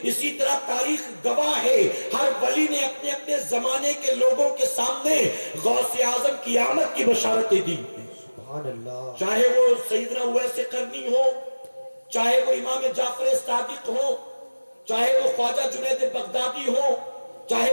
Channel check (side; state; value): both; inverted; correlation -1.00